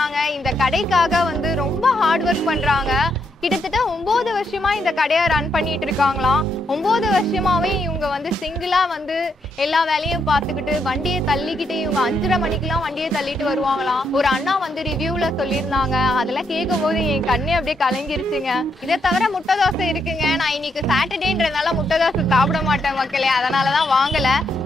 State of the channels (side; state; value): both; normal; correlation 0.78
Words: இந்த கடைக்காக வந்து ரொம்ப ஹார்ட் ஒர்க் பண்றாங்க. கிட்டத்தட்ட 9 வருஷமா இந்த கடையை ரன் பண்ணிட்டு இருக்காங்களாம். 9 வருஷமாவே இவங்க வந்து சிங்கிளா வந்து எல்லா வேலையும் பார்த்துக்கிட்டு வண்டியை தள்ளிக்கிட்டு இவங்க 5:30 மணிக்கெல்லாம் வண்டியை தள்ளிட்டு வருவாங்களாம். ஒரு அண்ணா வந்து ரிவ்யூல சொல்லியிருந்தாங்க, அதெல்லாம் கேட்கும் போது என் கண்ணே அப்படியே கலங்கிருச்சுங்க. இதை தவிர முட்டை தோசை இருக்குங்க. நான் இன்னைக்கு சாட்டர்டேன்றதுனால முட்டை தோசை சாப்பிட மாட்டேன் மக்களே, அதனாலதான் வாங்கல.